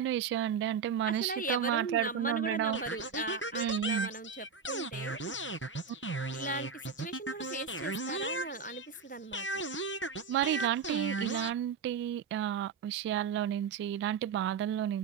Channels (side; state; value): left; quieter; 6.1 dB